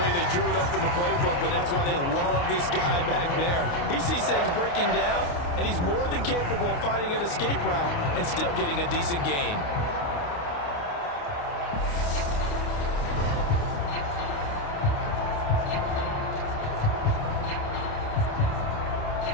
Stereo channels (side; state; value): right; late; 29 ms